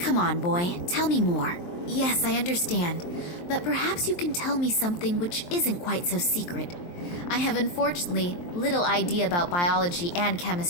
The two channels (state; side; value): late; right; 23 ms